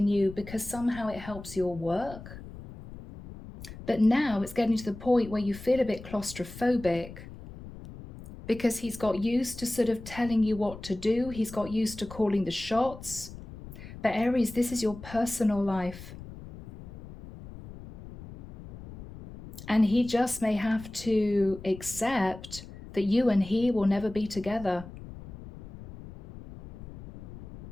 you because somehow it helps your work. But now it's getting to the point where you feel a bit claustrophobic because he's got used to sort of telling you what to do. He's got used to calling the shots. But Aries, this is your personal life. And he just may have to accept that you and he will never be together.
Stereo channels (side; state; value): left; noise; rumble, 15 dB below the sound